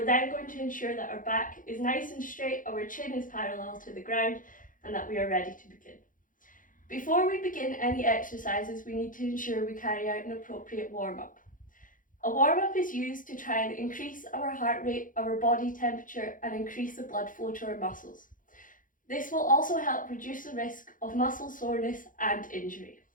then going to ensure that our back is nice and straight, our chin is parallel to the ground, and that we are ready to begin. Before we begin any exercises, we need to ensure we carry out an appropriate warm-up. A warm-up is used to try and increase our heart rate, our body temperature, and increase the blood flow to our muscles. This will also help reduce the risk of muscle soreness and injury.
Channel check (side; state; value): right; late; 0.39 ms